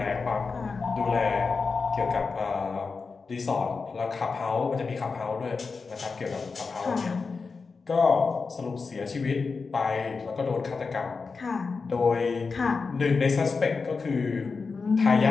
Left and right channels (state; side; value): quieter; right; 4.7 dB